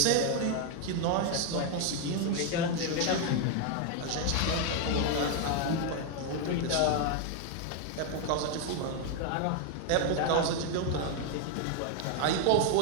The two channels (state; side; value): different; both; correlation 0.01